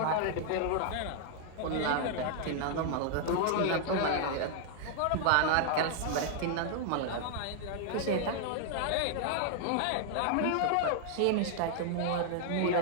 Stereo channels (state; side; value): different; both; correlation -0.01